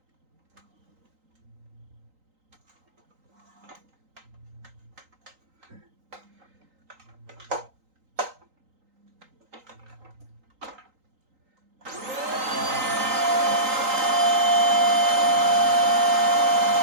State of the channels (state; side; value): late; left; 3.9 ms